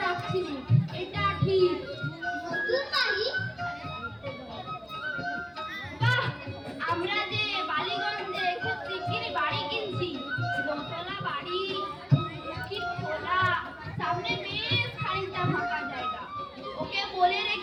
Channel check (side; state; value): both; identical; correlation 1.00